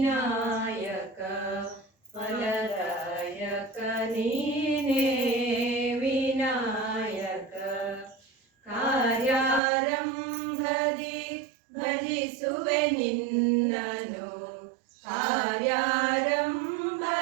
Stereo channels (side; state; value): left; drops out; at 9.6 s